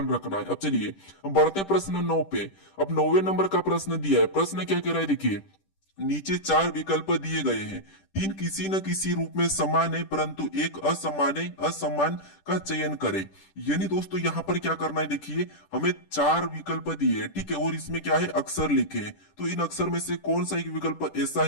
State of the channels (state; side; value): late; right; 10 ms